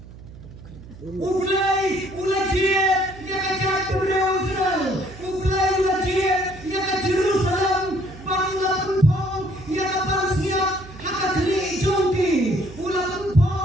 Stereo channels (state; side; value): noise; right; hum, 17 dB below the sound